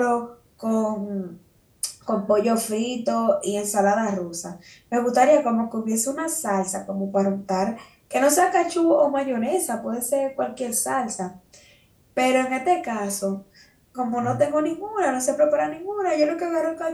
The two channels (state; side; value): identical; both; correlation 1.00